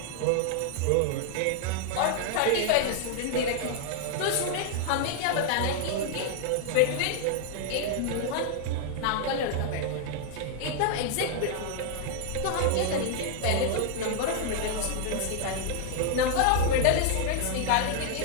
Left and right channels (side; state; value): both; different; correlation 0.00